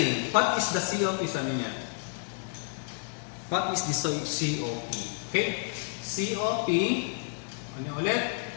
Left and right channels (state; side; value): silent; right; 58 dB below the other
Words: What is the COP? Sabi niya. What is the COP? Okay? COP, ano ulit?